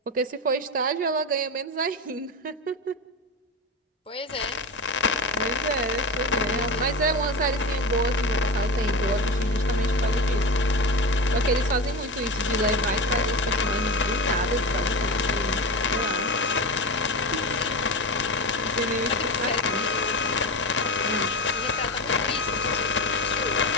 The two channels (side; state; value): both; normal; correlation 0.22